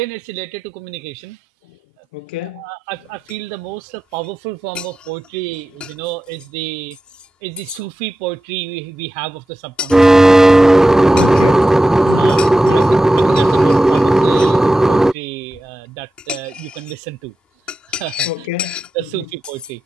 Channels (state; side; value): normal; both; correlation 0.92